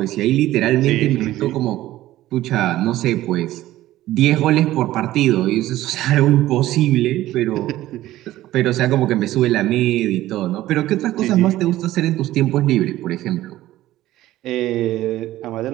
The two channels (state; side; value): quieter; left; 15.2 dB